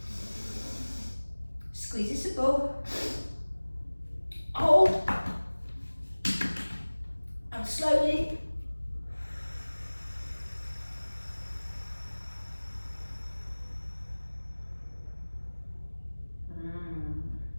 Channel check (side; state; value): both; inverted; correlation -1.00